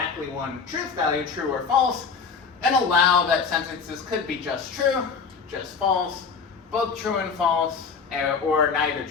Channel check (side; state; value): right; quieter; 5.6 dB